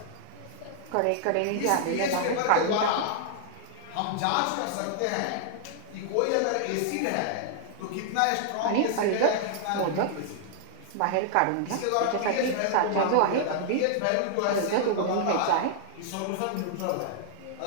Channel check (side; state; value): both; different; correlation -0.01